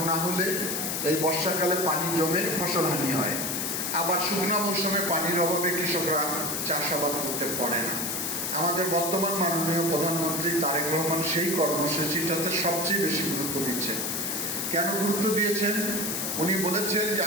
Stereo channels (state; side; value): noise; left; hiss, 2 dB below the sound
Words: না হলে এই বর্ষাকালে পানি জমে ফসলহানি হয়, আবার শুকনো মৌসুমে পানির অভাবে কৃষকরা চাষাবাদ করতে পারে না। আমাদের বর্তমান মাননীয় প্রধানমন্ত্রী তারেক রহমান সেই কর্মসূচিটাতে সবচেয়ে বেশি গুরুত্ব দিচ্ছেন। কেন গুরুত্ব দিয়েছেন? উনি বলেছেন যে